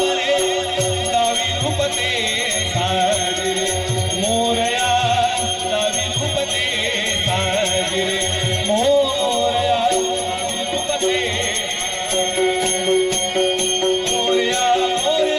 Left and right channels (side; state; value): both; identical; correlation 1.00